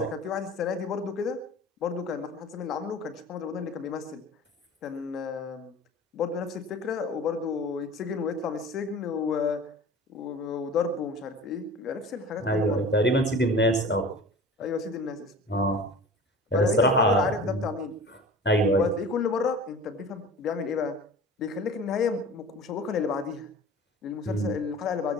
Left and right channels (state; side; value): normal; both; correlation 0.39